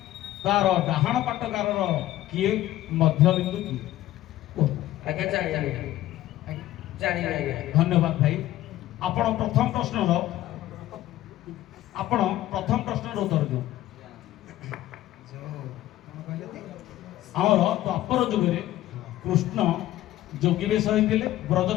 ତାର ଡାହାଣ ପାଟଗାରର କିଏ? ମଧ୍ୟବିନ୍ଦୁ କିଏ? ଆଜ୍ଞା ଜାଣିଲି। ଧନ୍ୟବାଦ ଭାଇ। ଆପଣ ପ୍ରଥମ ପ୍ରଶ୍ନର ଉତ୍ତର ଦିଅନ୍ତୁ। ଆମର ଦ୍ୱାପର ଯୁଗରେ କୃଷ୍ଣ ଯୋଗୀ ବେଶ ହୋଇଥିଲେ,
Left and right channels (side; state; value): right; quieter; 14.5 dB